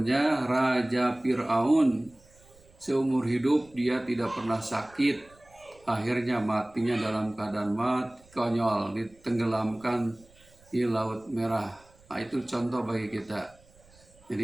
Raja Fir'aun. Seumur hidup dia tidak pernah sakit. Akhirnya matinya dalam keadaan mati, konyol, ditenggelamkan di Laut Merah. Nah, itu contoh bagi kita.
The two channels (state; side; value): noise; right; rumble, 28 dB below the sound